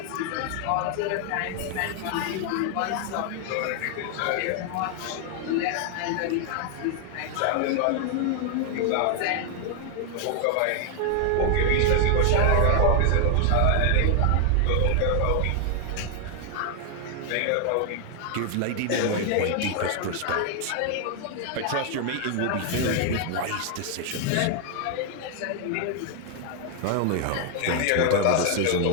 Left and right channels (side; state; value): both; different; correlation 0.00